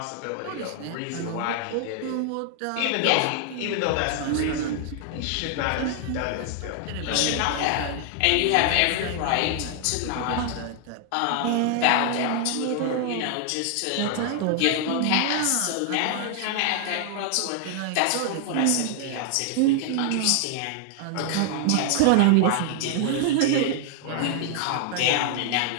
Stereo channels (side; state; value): both; different; correlation 0.00